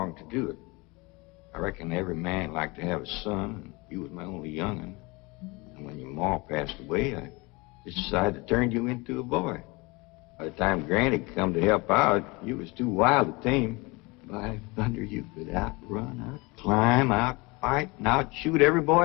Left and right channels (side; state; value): right; quieter; 25.6 dB